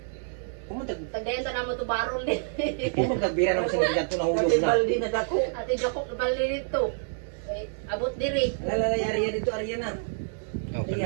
Kumutag Tagdayan ta namo to barol din. nagbira naman sa nila to nahulog Kasi na. balde na dako. Ate Joko bali dito. Kay abot diri. Lalala Arya dito Arya na. Oh,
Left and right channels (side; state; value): left; silent; digital silence